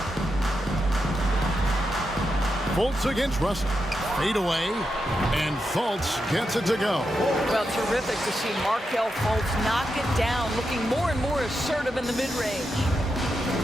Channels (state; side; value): normal; both; correlation 0.86